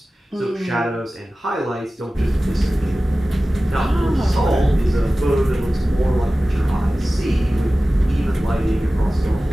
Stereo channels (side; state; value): both; normal; correlation 0.96